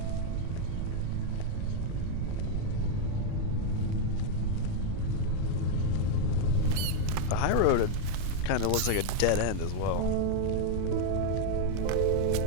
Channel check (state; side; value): different; both; correlation 0.00